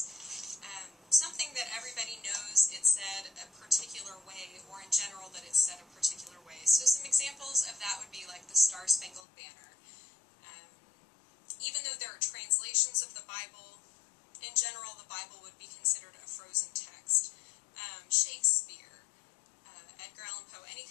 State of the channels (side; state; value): right; drops out; at 9.2 s